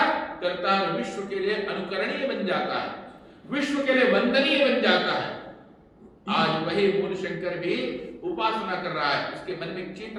करता है, विश्व के लिए अनुकरणीय बन जाता है, विश्व के लिए वंदनीय बन जाता है। आज वही मूल शंकर भी उपासना कर रहा है, उसके मन में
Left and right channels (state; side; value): identical; both; correlation 1.00